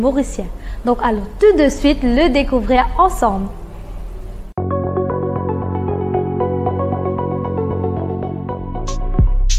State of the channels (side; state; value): both; identical; correlation 1.00